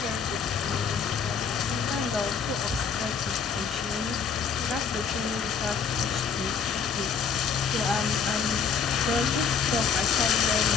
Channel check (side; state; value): right; quieter; 6.2 dB